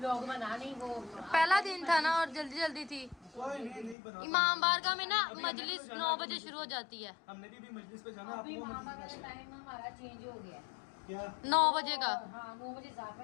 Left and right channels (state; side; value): drops out; right; at 4.0 s